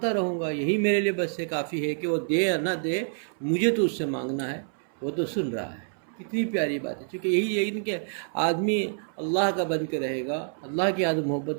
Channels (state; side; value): silent; left; 60 dB below the other